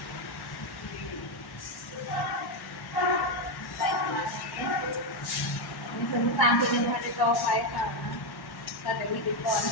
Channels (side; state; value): right; late; 1.1 ms